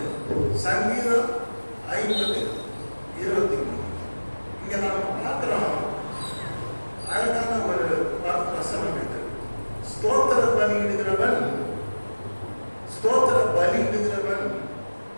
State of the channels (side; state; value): both; inverted; correlation -1.00